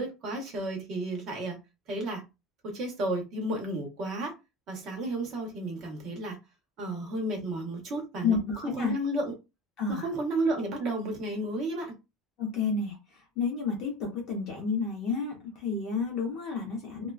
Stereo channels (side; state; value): both; normal; correlation 0.35